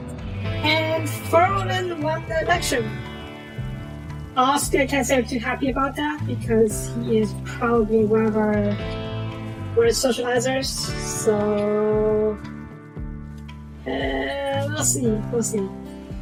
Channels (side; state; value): both; identical; correlation 1.00